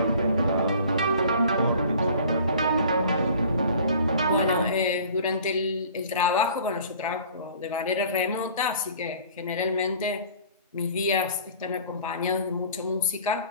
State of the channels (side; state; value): both; inverted; correlation -0.48